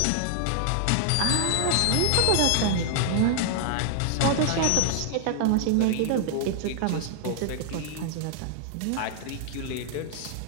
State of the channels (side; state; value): both; different; correlation 0.00